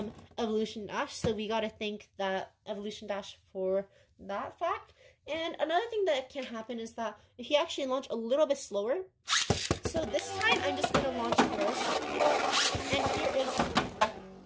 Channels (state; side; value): identical; both; correlation 1.00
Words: Evolution Dash. So we gotta thank that Evolution Dash for that fact. And another thing that can happen is that if you actually launch a little bit slower, so this time I'm just gonna launch first. And here is,